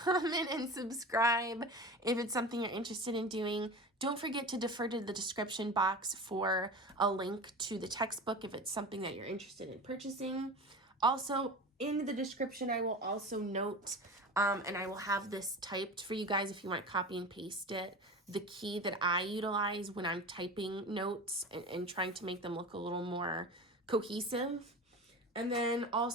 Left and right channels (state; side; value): normal; both; correlation 0.32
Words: and subscribe if it's something you're interested in doing. Don't forget to defer to the description box for a link to the textbook if it's something that you're interested in purchasing. Also, in the description, I will also note, and I will have this typed for you guys if you want to copy and paste it, the key that I utilize when I'm typing notes and trying to make them look a little more cohesive. And then